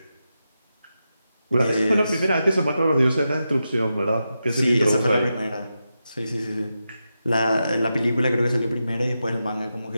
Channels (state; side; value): inverted; both; correlation -0.89